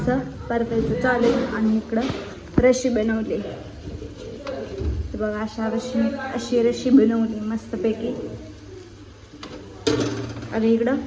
परतायचं चालू आणि इकडं रशी बनवली. तर बघा अशी रशी बनवली मस्तपैकी आणि इकडं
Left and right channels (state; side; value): identical; both; correlation 1.00